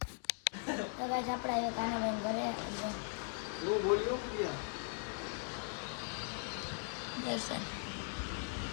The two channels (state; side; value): silent; right; 52 dB below the other